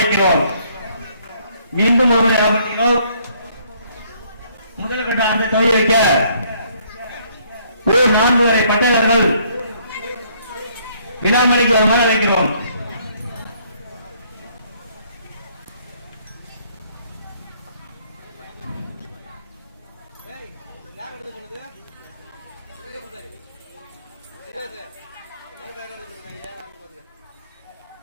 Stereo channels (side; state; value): both; inverted; correlation -0.65